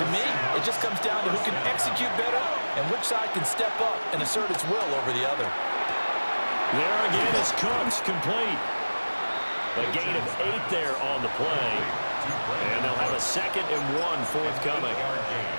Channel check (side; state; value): both; inverted; correlation -1.00